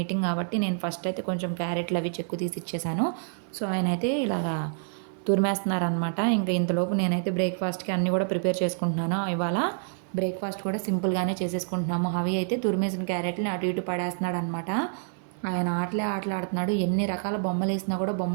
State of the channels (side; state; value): left; silent; 60 dB below the other